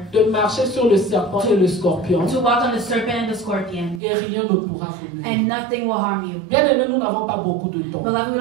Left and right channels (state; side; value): drops out; left; at 4.0 s